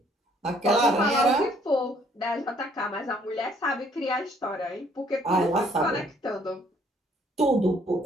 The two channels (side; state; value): both; normal; correlation 0.63